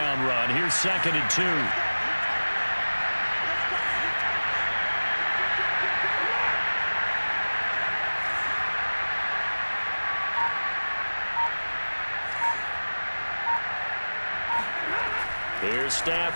run. Here's 2nd and 2. Here's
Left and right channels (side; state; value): both; inverted; correlation -1.00